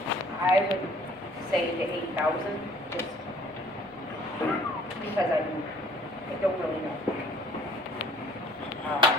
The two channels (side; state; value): left; noise; rumble, 28 dB below the sound